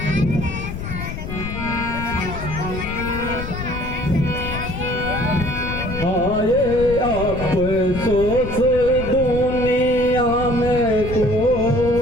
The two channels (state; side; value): noise; left; rumble, 7 dB below the sound